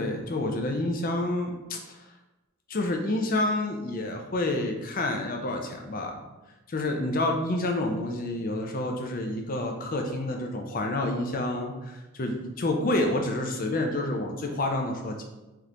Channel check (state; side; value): normal; both; correlation 0.36